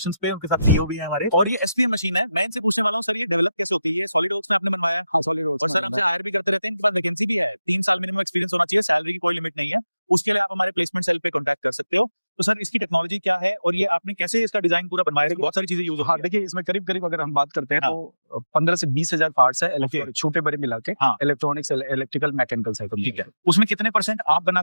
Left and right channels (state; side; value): inverted; both; correlation -0.93